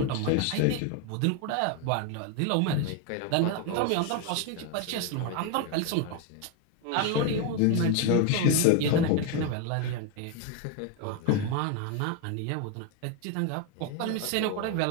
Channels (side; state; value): both; different; correlation 0.01